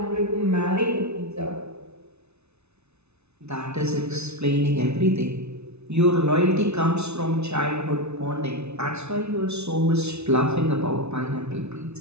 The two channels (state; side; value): late; left; 0.81 ms